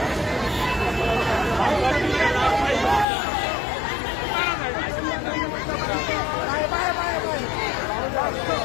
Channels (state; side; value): drops out; right; at 3.1 s